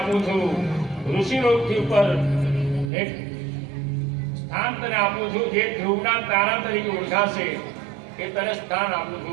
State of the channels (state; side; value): drops out; left; at 2.9 s